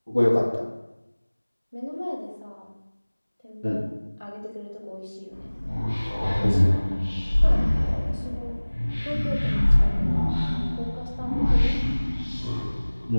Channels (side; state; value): both; inverted; correlation -1.00